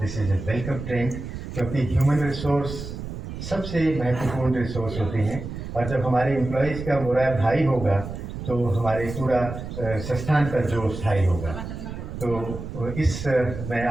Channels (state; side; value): noise; right; rumble, 8 dB below the sound